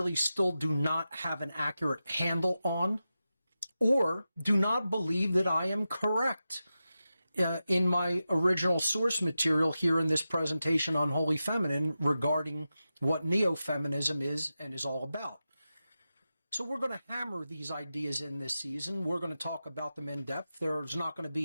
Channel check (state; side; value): inverted; both; correlation -0.92